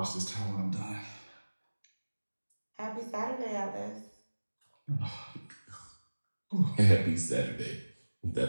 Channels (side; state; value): both; inverted; correlation -1.00